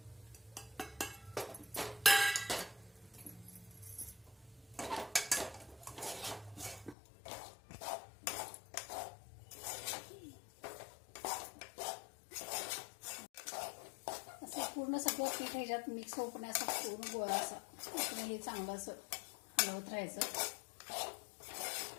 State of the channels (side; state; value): right; drops out; at 7.0 s